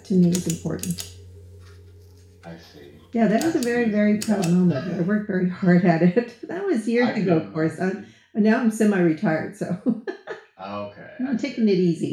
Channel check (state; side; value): identical; both; correlation 1.00